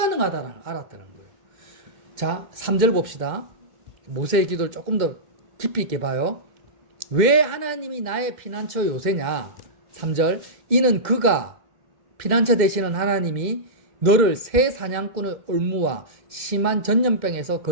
알았다는 거예요. 자, 3절 봅시다. 모세의 기도를 조금 더 깊이 있게 봐요. 왜 하나님이 나의 피난처 요새냐? 3절. 이는 그가 피난처 되시는 하나님이 너를 새 사냥꾼의 올무와 심한 전염병에서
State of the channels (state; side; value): late; left; 2.1 ms